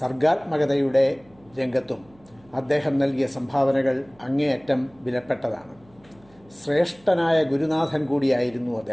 രംഗത്തും അദ്ദേഹം നൽകിയ സംഭാവനകൾ അങ്ങേയറ്റം വിലപ്പെട്ടതാണ്. ശ്രേഷ്ഠനായ ഗുരുനാഥൻ കൂടിയായിരുന്നു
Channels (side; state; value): right; noise; hum, 29 dB below the sound